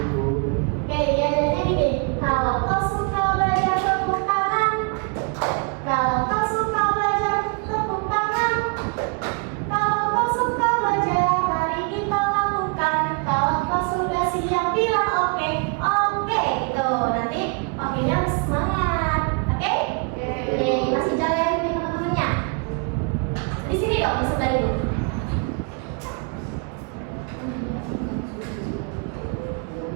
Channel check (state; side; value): quieter; left; 35.4 dB